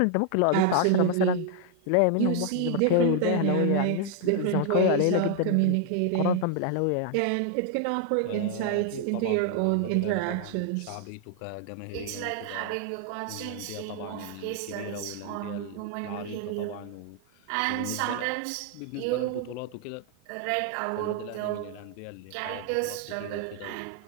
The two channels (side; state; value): both; different; correlation 0.00